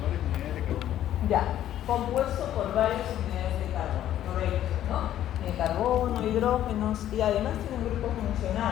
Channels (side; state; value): right; quieter; 11.9 dB